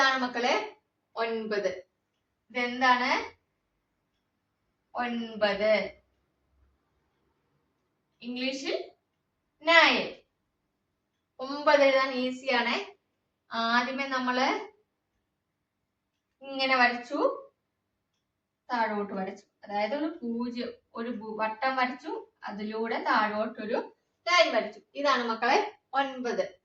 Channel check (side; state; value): both; identical; correlation 1.00